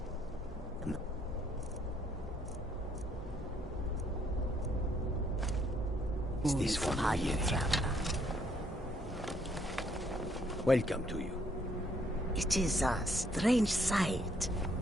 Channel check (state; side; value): normal; both; correlation 0.68